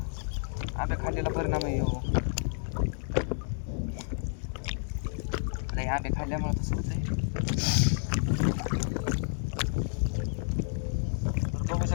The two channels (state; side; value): silent; right; digital silence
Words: आंबे खाल्लेला परिणाम आहे हो. नाही आंबे खाल्ल्यामुळे तसं होतंय. तर बघू